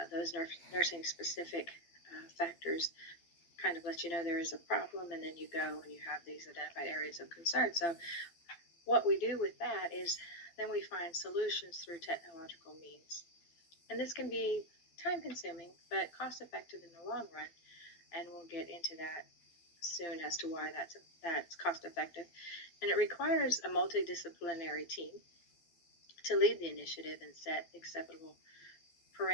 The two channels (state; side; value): late; right; 12 ms